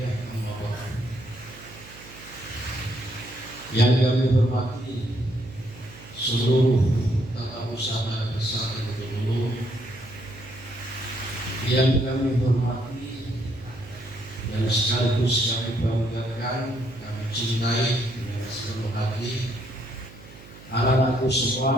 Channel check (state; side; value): noise; right; hum, 19 dB below the sound